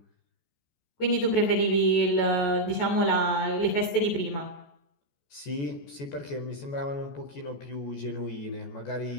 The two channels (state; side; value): late; right; 14 ms